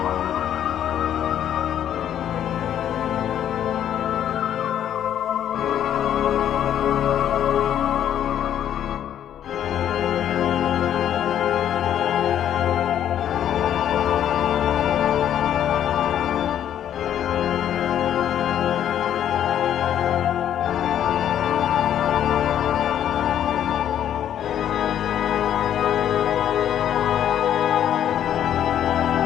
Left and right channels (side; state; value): right; quieter; 10.4 dB